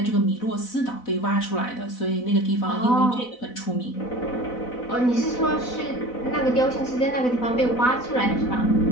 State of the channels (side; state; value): right; late; 4.0 ms